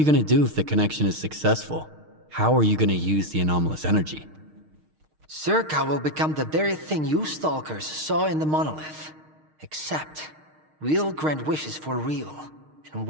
gonna do if the connection is successful? How are you gonna use the anomalous energy? S.T.A.L.K.E.R will become the very thing you stalkers saw in the monolith. Except, we'll grant wishes for real, and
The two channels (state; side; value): late; left; 6.5 ms